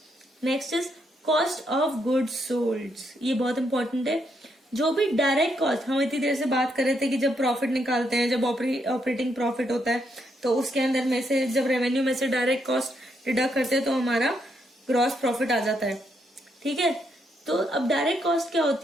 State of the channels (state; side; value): normal; both; correlation 0.77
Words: Next is cost of goods sold. ये बहुत इंपॉर्टेंट है। जो भी डायरेक्ट कॉस्ट, हम इतनी देर से बात कर रहे थे कि जब प्रॉफिट निकालते हैं, जब ऑपरेटिंग प्रॉफिट होता है, तो उसके अंदर में से जब रेवेन्यू में से डायरेक्ट कॉस्ट डिडक्ट करते हैं तो हमारा ग्रॉस प्रॉफिट आ जाता है। ठीक है, तो अब डायरेक्ट कॉस्ट क्या